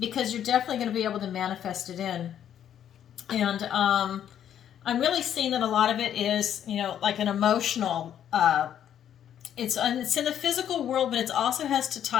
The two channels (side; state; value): right; quieter; 9.9 dB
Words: because you're definitely going to be able to manifest it in. And I'm really seeing that a lot of it is, you know, like an emotional, it's in the physical world, but it also has to